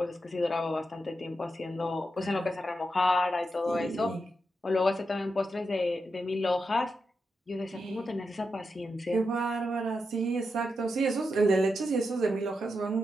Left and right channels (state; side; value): normal; both; correlation 0.86